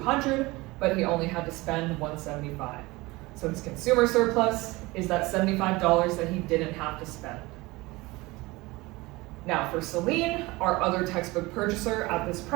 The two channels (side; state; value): left; quieter; 21.8 dB